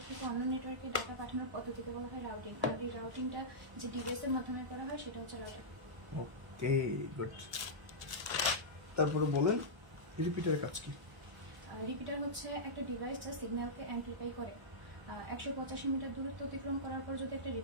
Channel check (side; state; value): left; late; 1.0 ms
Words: থেকে অন্য নেটওয়ার্কে ডাটা পাঠানোর পদ্ধতিকে বলা হয় রাউটিং। আর এই রাউটিংটা যে ডিভাইসের মাধ্যমে করা হয় সেটা হচ্ছে রাউটার। Okay good. তারপরে বলেন রিপিটারের কাজ কি? রিপিটার হচ্ছে একটা ডিভাইস যা সিগন্যালকে অ্যাম্পলিফাই করে। 185 মিটার দূরত্ব অতিক্রম করার পর যদি একটা